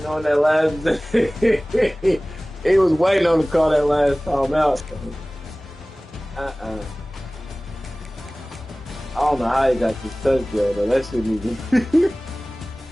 that last he was waiting on to call that last time out. I don't know how he got this touchdown though. That shouldn't even.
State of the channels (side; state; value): both; normal; correlation 0.98